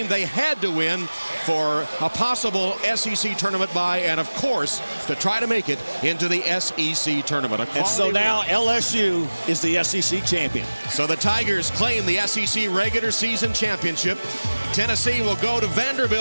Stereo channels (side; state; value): both; inverted; correlation -1.00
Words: they had to win for a possible SEC tournament bye, and, of course, to try to make it into the SEC tournament. And so now LSU is the SEC champion. So the Tigers claim the SEC regular season championship. Tennessee will go to